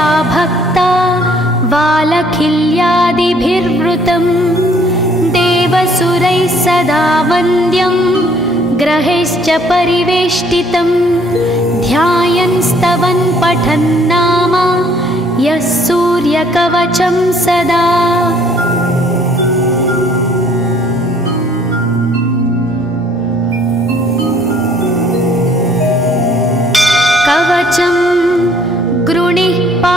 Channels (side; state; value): both; normal; correlation 0.60